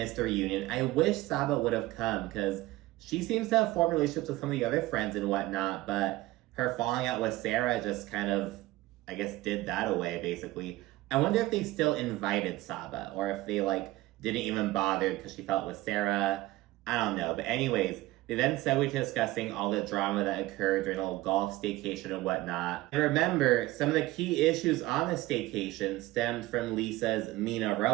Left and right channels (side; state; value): left; quieter; 18.3 dB